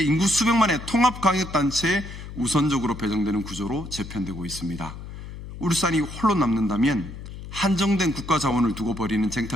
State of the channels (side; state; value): left; noise; hum, 11 dB below the sound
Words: 인구 수백만의 통합광역단체에 우선적으로 배정되는 구조로 재편되고 있습니다. 울산이 홀로 남는다면 한정된 국가 자원을 두고 벌이는